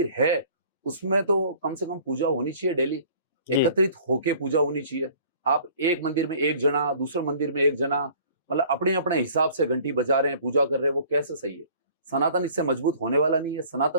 है उसमें तो कम से कम पूजा होनी चाहिए डेली, एकत्रित होके पूजा होनी चाहिए। आप एक मंदिर में एक जना, दूसरे मंदिर में एक जना, मतलब अपने अपने हिसाब से घंटी बजा रहे हैं, पूजा कर रहे हैं, वो कैसे सही है? सनातन इससे मजबूत होने वाला नहीं है।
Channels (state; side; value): inverted; both; correlation -0.51